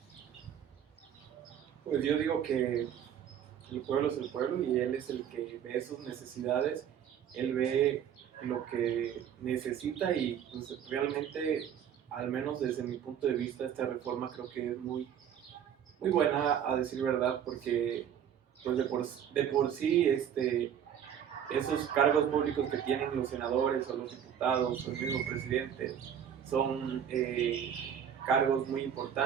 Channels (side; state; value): left; quieter; 9.0 dB